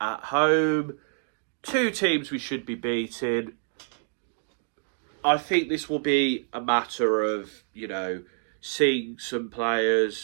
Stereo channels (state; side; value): silent; left; digital silence